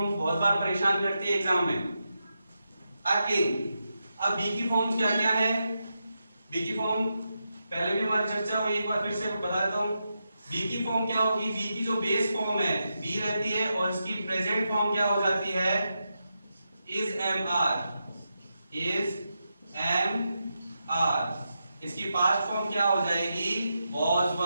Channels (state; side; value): inverted; both; correlation -0.87